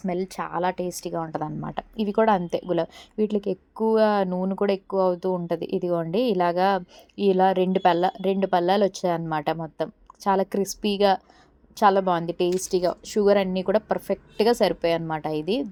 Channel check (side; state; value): both; identical; correlation 1.00